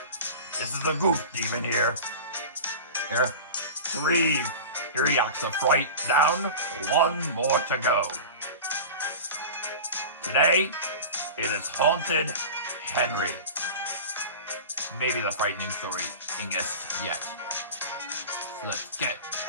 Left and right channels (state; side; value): inverted; both; correlation -0.32